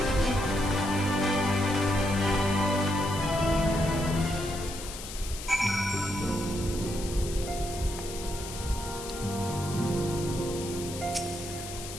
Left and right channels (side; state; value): left; noise; hiss, 10 dB below the sound